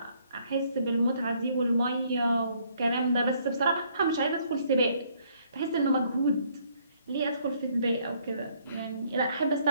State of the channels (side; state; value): both; inverted; correlation -0.66